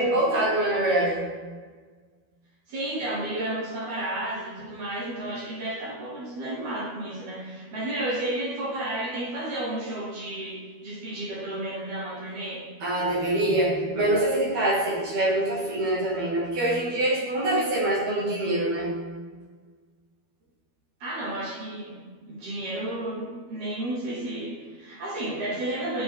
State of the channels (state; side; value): late; left; 12 ms